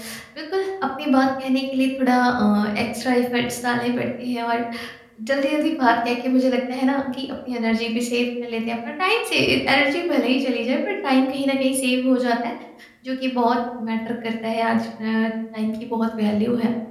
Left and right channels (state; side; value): identical; both; correlation 1.00